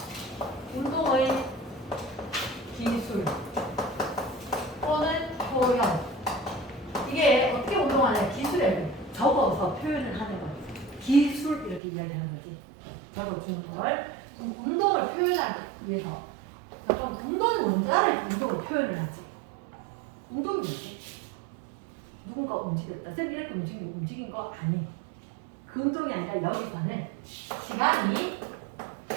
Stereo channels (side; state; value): left; drops out; at 11.8 s